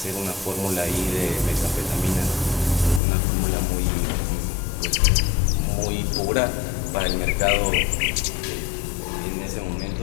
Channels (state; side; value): drops out; right; at 3.0 s